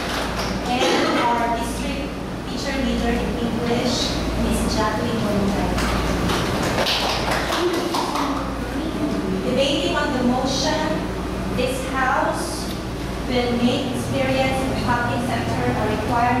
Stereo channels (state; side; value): identical; both; correlation 1.00